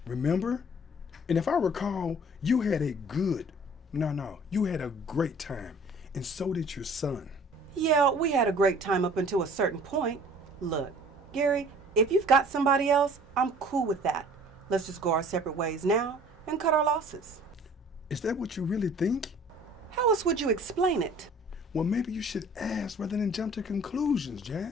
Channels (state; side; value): normal; both; correlation 0.51